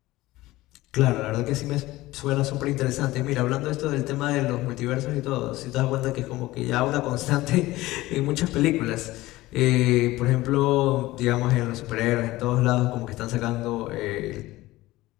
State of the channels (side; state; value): right; quieter; 18.1 dB